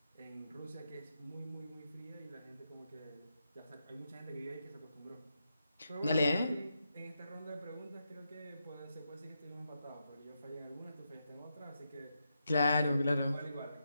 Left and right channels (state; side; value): inverted; both; correlation -0.85